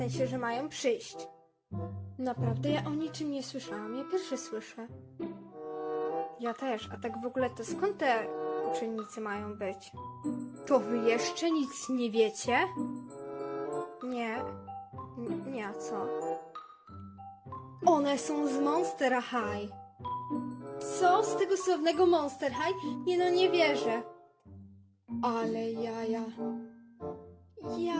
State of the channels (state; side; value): identical; both; correlation 1.00